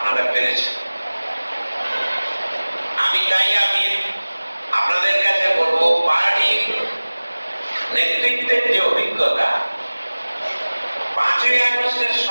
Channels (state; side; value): inverted; both; correlation -1.00